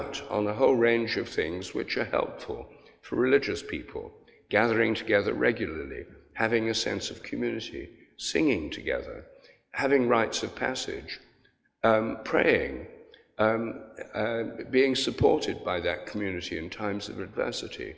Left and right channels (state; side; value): identical; both; correlation 1.00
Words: on a whole range of things which are helpful for religious people, gathering together regularly, having a sense of community, singing together, having rites of passage, praying, being supported by that community in times of adversity,